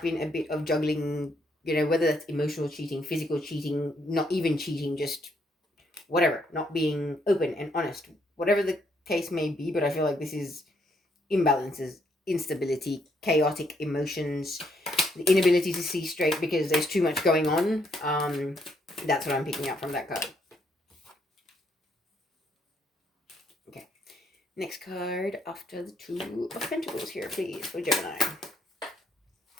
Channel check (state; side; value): normal; both; correlation 0.72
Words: a bit of juggling, whether that's emotional cheating, physical cheating, not even cheating, just whatever, not being open and honest, whatever the case may be. But I feel like this is imbalances, instability, chaotic emotions, the inability to see straight because there's too much going on. That's what I'm picking up from that card. Okay. Next card after the 2 of Pentacles here, please, for Gemini.